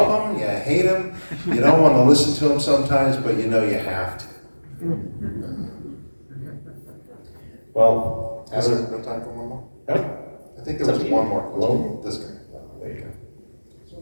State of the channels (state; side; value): inverted; both; correlation -1.00